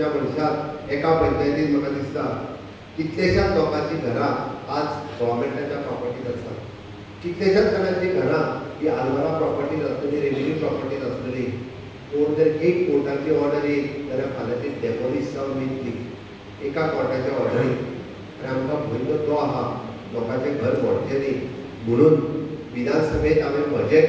मनशाक एका पंचायतीन म्हाका दिसता कितलेशाच लोकांची घरां आज गव्हर्मेंटाच्या प्रॉपर्टीज आसा. कितलेशाच जाणांची घरां ही आलवारा प्रॉपर्टीज आसतली, रेव्हेन्यू प्रॉपर्टीज आसतली. कोण जर एक कोर्टाची ऑर्डर येयली जाल्यार फाल्यां ती डेमोलिश जावन वयतली एका कोर्टाच्या ऑर्डरीन. आनी आमकां भंय तो आहा लोकांचें घर मोडचें न्ही. म्हणून विधानसभेत हांवें म्हजें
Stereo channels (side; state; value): both; identical; correlation 1.00